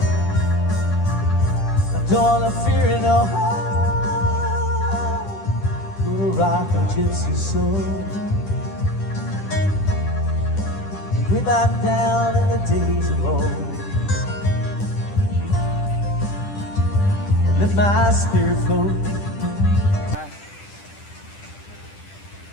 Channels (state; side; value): late; right; 10 ms